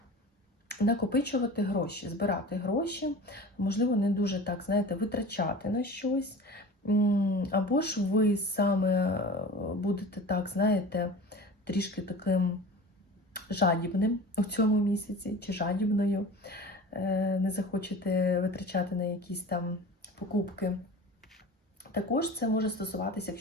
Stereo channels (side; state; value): both; normal; correlation 0.37